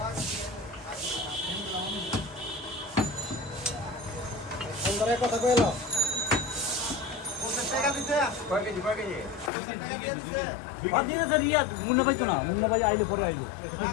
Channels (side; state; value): right; drops out; at 9.5 s